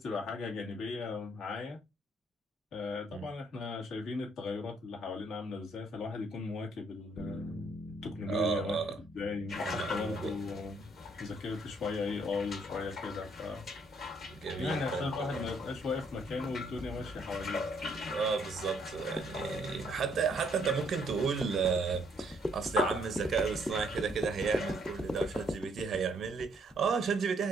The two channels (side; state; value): both; normal; correlation 0.68